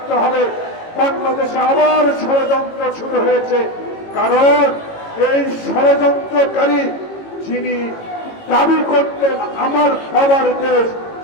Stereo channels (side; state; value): right; late; 18 ms